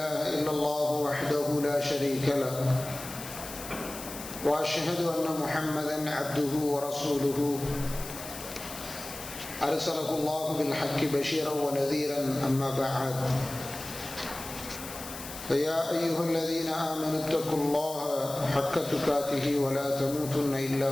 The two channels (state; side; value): noise; left; hiss, 11 dB below the sound